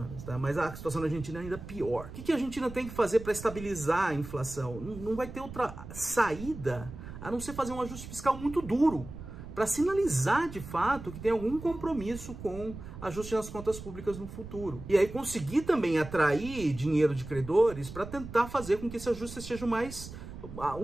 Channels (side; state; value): right; noise; rumble, 12 dB below the sound